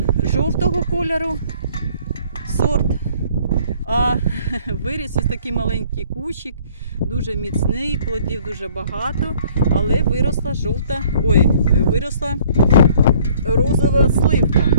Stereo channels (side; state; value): both; inverted; correlation -0.57